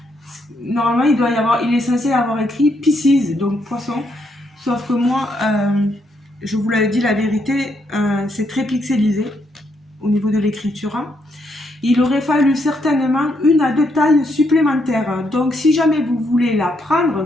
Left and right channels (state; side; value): normal; both; correlation 0.76